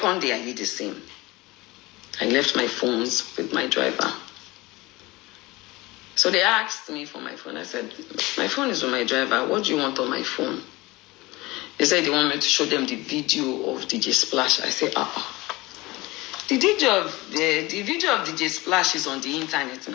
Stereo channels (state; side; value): quieter; right; 21.4 dB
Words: day I did the same. I left my phones with my driver. So they asked me for my phone. I said, my phone is with my driver. What do you want on my phone? They said they want me to show them the video of DJ Splash. I said, The video of DJ Splash is on the internet